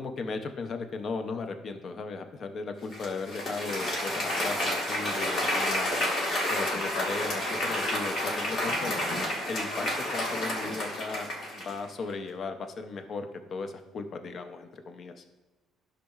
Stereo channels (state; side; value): normal; both; correlation 0.66